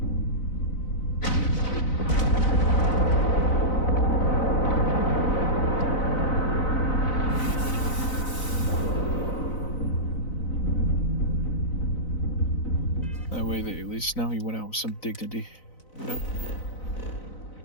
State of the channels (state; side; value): late; right; 4.0 ms